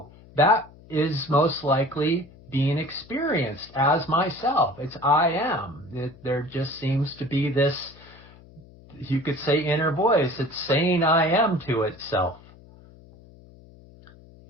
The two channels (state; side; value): noise; left; hum, 23 dB below the sound